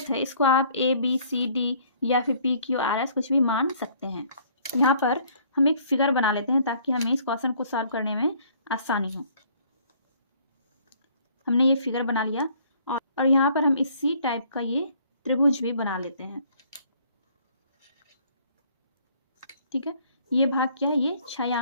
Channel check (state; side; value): inverted; both; correlation -0.60